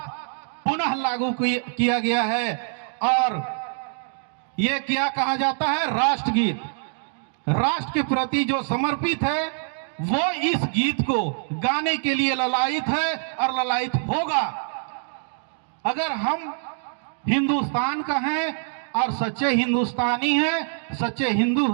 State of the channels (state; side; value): silent; left; 60 dB below the other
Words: पुनः लागू किया गया है। और ये क्या कहा जाता है? राष्ट्रगीत। राष्ट्र के प्रति जो समर्पित है वो इस गीत को गाने के लिए ललायित है और ललायित होगा। अगर हम हिंदुस्तान का हैं और सच्चे हिंदुस्तानी हैं, सच्चे हिंदू